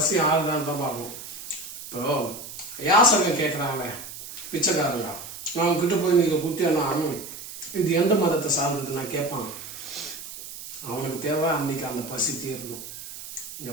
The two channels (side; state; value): right; noise; hiss, 12 dB below the sound